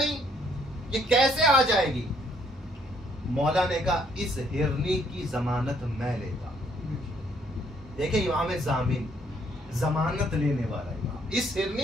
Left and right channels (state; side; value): normal; both; correlation 0.67